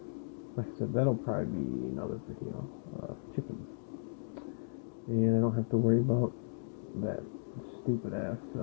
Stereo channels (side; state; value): right; silent; digital silence